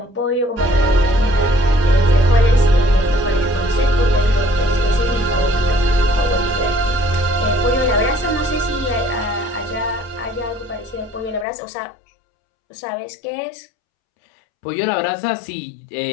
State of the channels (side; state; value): right; drops out; at 11.5 s